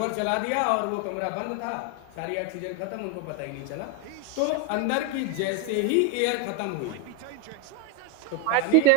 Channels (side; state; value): both; different; correlation 0.01